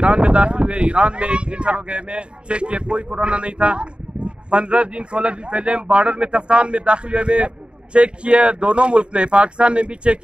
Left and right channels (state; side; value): late; left; 0.054 ms